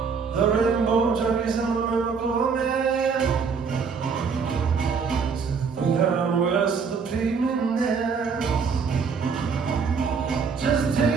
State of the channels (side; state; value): left; quieter; 5.6 dB